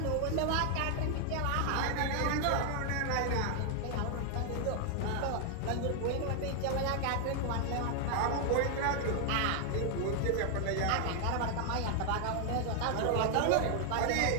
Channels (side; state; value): both; different; correlation 0.00